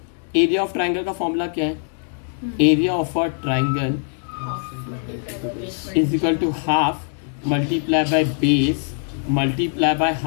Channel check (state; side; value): silent; right; 64 dB below the other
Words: एरिया ऑफ ट्राइंगल का फॉर्मूला क्या है? Area of a triangle is equal to half multiply by base multiply by